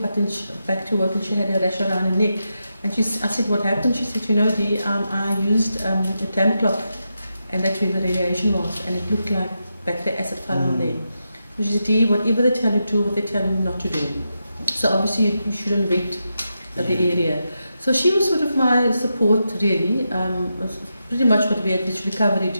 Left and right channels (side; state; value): both; inverted; correlation -0.87